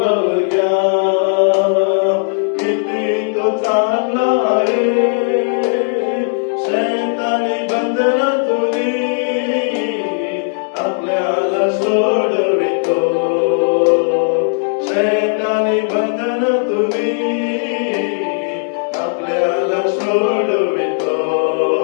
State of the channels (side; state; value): right; silent; digital silence